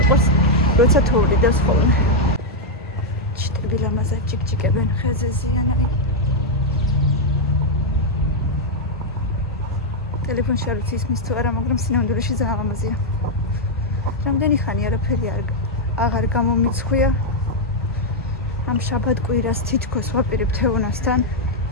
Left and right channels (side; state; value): both; normal; correlation -0.01